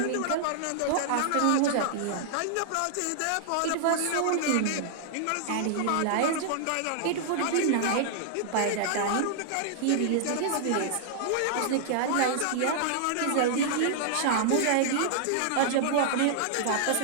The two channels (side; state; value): both; different; correlation -0.01